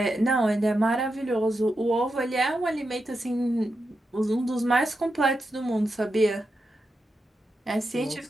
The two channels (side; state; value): both; normal; correlation 0.87